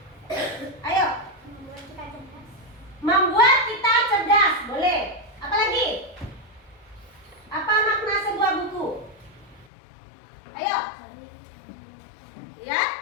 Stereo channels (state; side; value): drops out; right; at 9.7 s